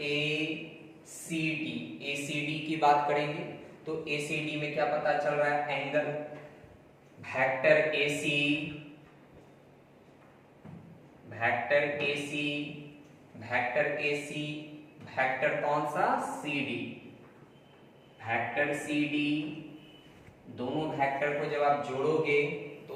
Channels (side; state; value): both; identical; correlation 1.00